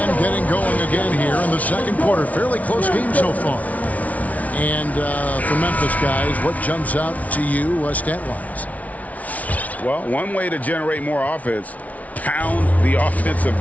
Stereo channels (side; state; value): right; late; 0.070 ms